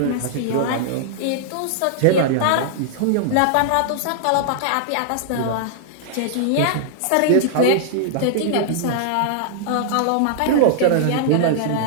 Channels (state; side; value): different; both; correlation -0.01